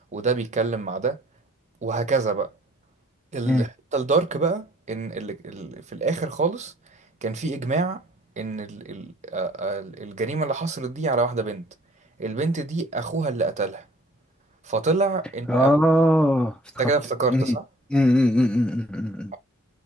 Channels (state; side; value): normal; both; correlation 0.57